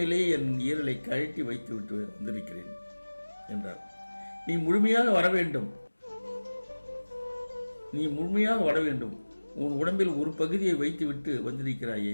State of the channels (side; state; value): both; inverted; correlation -1.00